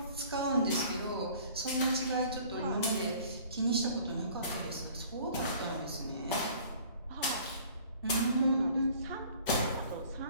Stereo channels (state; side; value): inverted; both; correlation -0.51